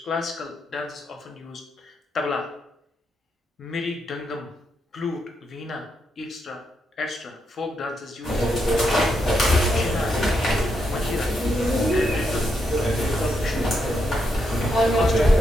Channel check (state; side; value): normal; both; correlation 0.81